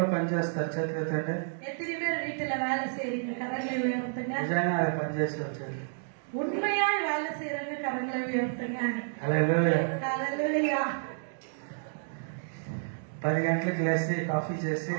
పని చేస్తారు? చేతులు ఎత్తండి. எத்தனை பேர் வீட்டுல வேலை செய்றீங்க? கரங்களை உயர்த்துங்க. నిజంగా అది పని చేసి వచ్చేది. உண்மையாய் வேலை செய்றவங்க கரங்களை உயர்த்துங்க. హల్లెలూయా. ஹalleluya. 10 గంటలకు లేచి కాఫీ చేసి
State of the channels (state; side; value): silent; left; digital silence